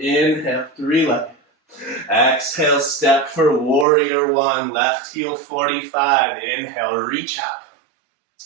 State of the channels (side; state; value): left; drops out; at 3.9 s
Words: Inhale, 3-legged. Exhale, step for warrior 1, left heel 45. Inhale, reach up.